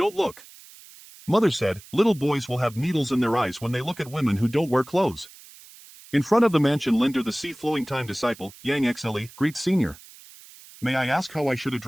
look. Mother said, little boys will have needles in their eyes when they look at women who don't wear clothes. In front of the mansion Linder the sea-flowing time disciple, Yang XLE, greets senior. May I ask how I should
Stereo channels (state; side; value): noise; right; hiss, 21 dB below the sound